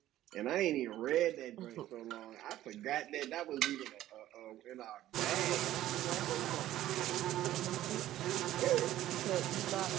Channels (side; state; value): left; quieter; 13.7 dB